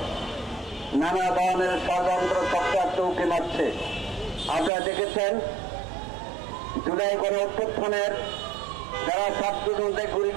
নানা ধরনের ষড়যন্ত্র চক্রার চৌকি মারছে। আপনারা দেখেছেন জুলাই গণ অভ্যুত্থানের যারা ছাত্রজনদের গুলি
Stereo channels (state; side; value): drops out; left; at 4.7 s